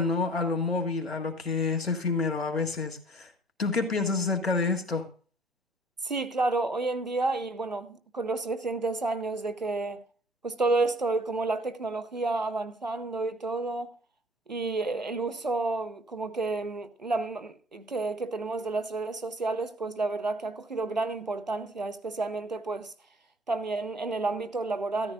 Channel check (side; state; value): both; normal; correlation 0.54